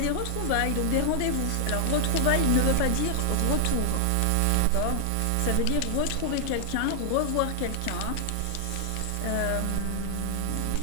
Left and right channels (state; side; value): different; both; correlation 0.00